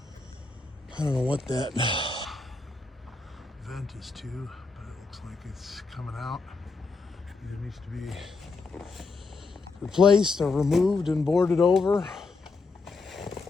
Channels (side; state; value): right; quieter; 4.0 dB